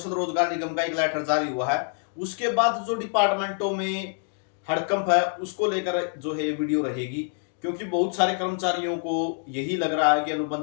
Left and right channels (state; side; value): silent; right; 57 dB below the other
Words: रोजगार निगम का एक लेटर जारी हुआ है। उसके बाद जो डिपार्टमेंटों में हड़कंप है उसको लेकर जो है ये वीडियो रहेगी, क्योंकि बहुत सारे कर्मचारियों को यही लग रहा है कि